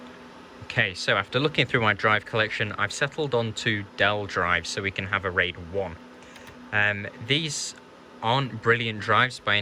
Okay, so after looking through my drive collection, I've settled on 2 Dell drives so we can have a RAID 1. These aren't brilliant drives by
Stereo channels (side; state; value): both; identical; correlation 1.00